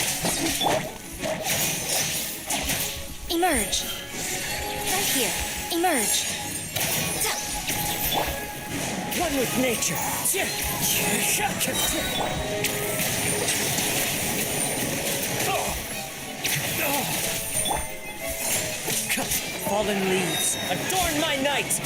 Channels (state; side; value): identical; both; correlation 1.00